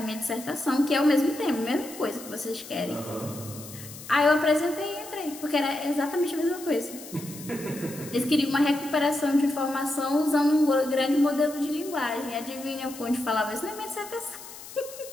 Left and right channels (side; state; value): left; noise; hiss, 15 dB below the sound